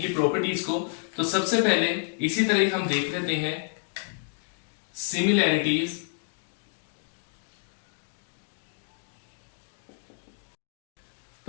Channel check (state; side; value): silent; right; digital silence